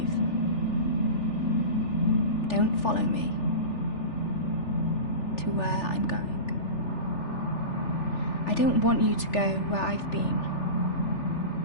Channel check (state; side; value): late; right; 3.4 ms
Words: Don't follow me to where I'm going. I don't want you to go where I've been